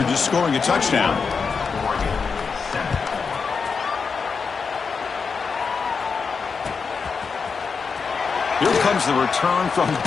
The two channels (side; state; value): right; quieter; 5.4 dB